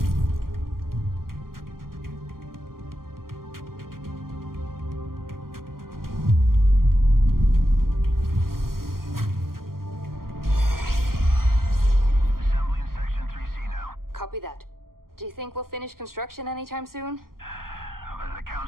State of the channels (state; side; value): late; left; 0.92 ms